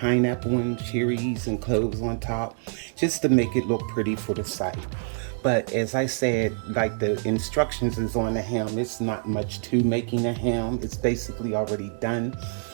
and cherries and cloves on top, just to make it look pretty for the site. But as I said, like the instructions is on the ham, it's not much to making a ham. It's basically already done.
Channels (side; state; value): left; silent; 61 dB below the other